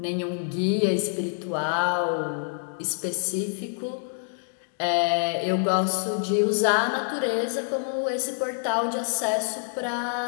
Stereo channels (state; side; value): silent; right; digital silence